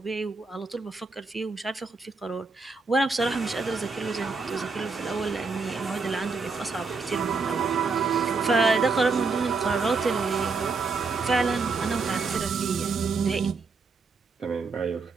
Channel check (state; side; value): quieter; left; 4.3 dB